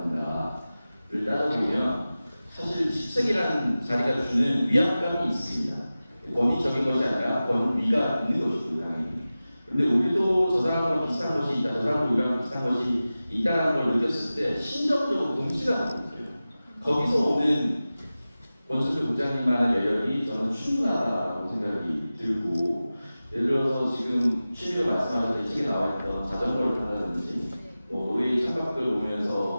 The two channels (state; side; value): inverted; both; correlation -0.96